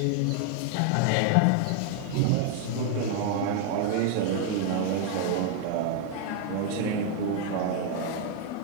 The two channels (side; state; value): both; different; correlation 0.00